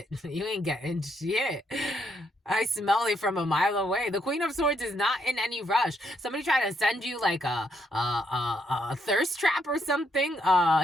You ain't getting shit. I smell it from a mile away. The Queen of Swords is not in any rush. Somebody try to send you like a thirst trap or something.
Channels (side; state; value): both; normal; correlation 0.75